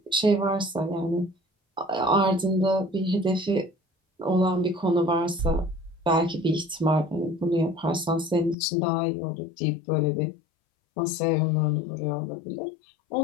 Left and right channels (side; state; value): right; drops out; at 8.6 s